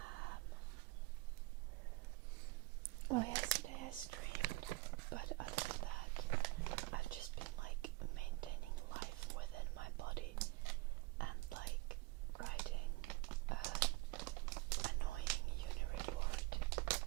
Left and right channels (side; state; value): left; quieter; 21.9 dB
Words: Well, yesterday I streamed, but other than that, I've just been like maintaining life within my body and like writing an annoying uni report,